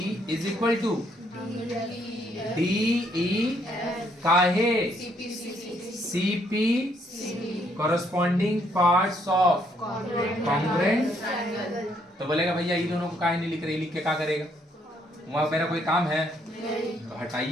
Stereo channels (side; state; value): both; normal; correlation 0.70